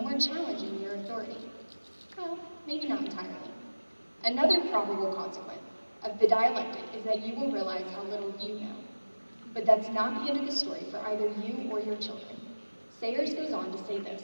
more challenging your authority. Well, maybe not entirely. Another probable consequence of the dialectic is that you will realize how little you know. But that's not the end of the story for either you or your children. Sayers goes on to say this:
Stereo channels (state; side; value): inverted; both; correlation -1.00